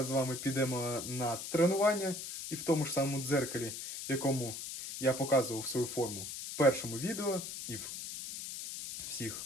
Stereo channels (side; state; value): left; noise; hiss, 7 dB below the sound